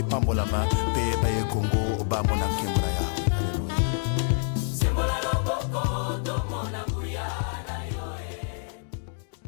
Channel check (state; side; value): silent; right; 60 dB below the other